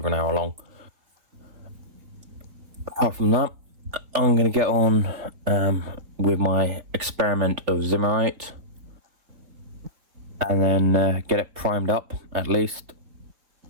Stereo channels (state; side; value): late; left; 3.9 ms